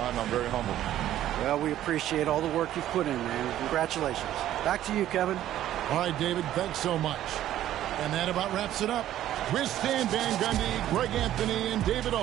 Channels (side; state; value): left; quieter; 12.6 dB